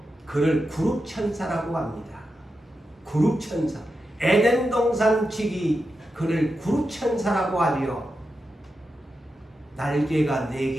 그를 그룹천사라고 합니다. 그룹천사. 에덴 동산 지기 그를 그룹천사라고 하지요. 날개가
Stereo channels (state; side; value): normal; both; correlation 0.89